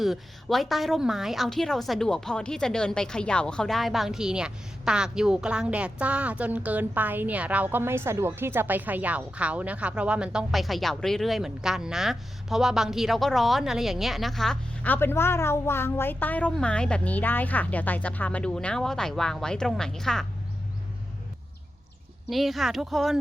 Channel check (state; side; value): normal; both; correlation 0.90